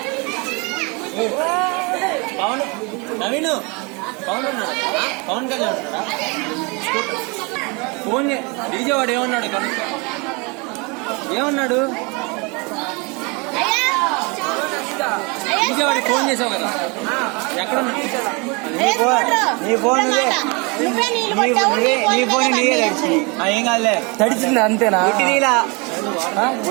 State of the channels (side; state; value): left; quieter; 29.8 dB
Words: పవన్ నవీన్ పవన్ ఉన్నాడా పవన్ కళ్యాణ్ ఉన్నాడా ఫోన్ డీజే వాడు ఏమన్నాడు ఏమన్నాడు డీజే వాడికి ఫోన్ చేసావు కదా ఎక్కడ నీ ఫోన్ నీకే తడిచి ఏం కాదులే తడిచింది అంతేనా